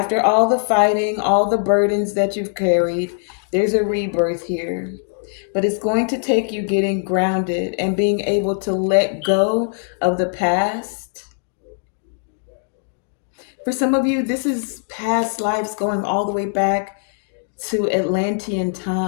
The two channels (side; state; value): right; silent; digital silence